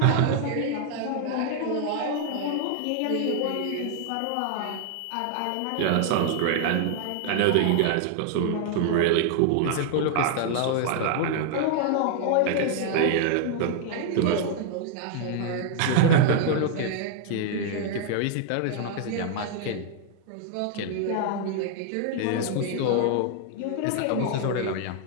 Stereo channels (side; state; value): both; different; correlation 0.00